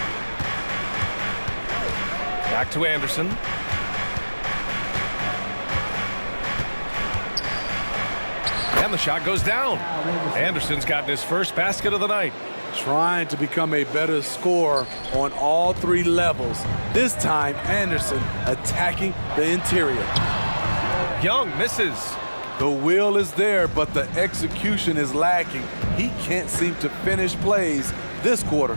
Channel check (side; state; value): both; inverted; correlation -1.00